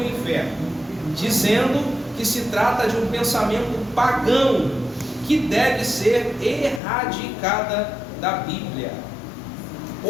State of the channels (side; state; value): right; drops out; at 6.8 s